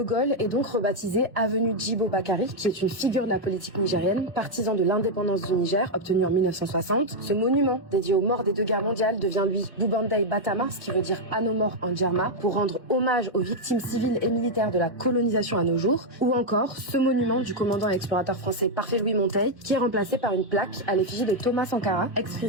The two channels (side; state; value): both; normal; correlation 0.00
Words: Gaulle est donc rebaptisée avenue Djibo Bakary, qui est une figure de la politique nigérienne, partisan de l'indépendance du Niger, obtenue en 1960. Ce monument, dédié aux morts des 2 guerres mondiales, devient lui Boubandai Batama, ce qui veut dire à nos morts en djerma, pour rendre hommage aux victimes civiles et militaires de la colonisation à nos jours. Ou encore, ce monument du commandant et explorateur français Parfait Louis Monteil, qui est remplacé par une plaque à l'effigie de Thomas Sankara,